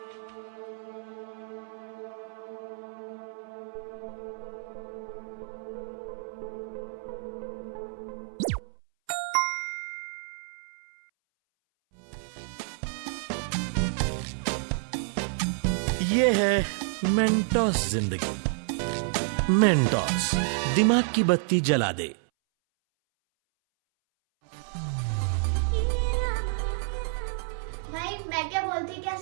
ये है मेंटोस जिंदगी। मेंटोस दिमाग की बत्ती जला दे। भाई मैं क्या बोलती, क्या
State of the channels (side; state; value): left; silent; 58 dB below the other